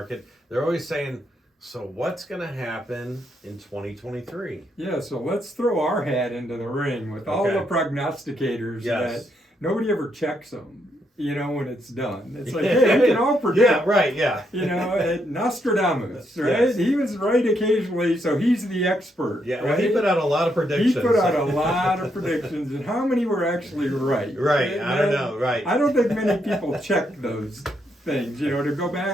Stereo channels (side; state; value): both; normal; correlation 0.77